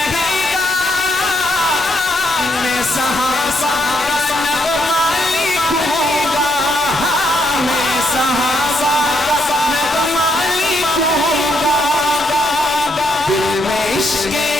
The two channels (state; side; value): normal; both; correlation 0.76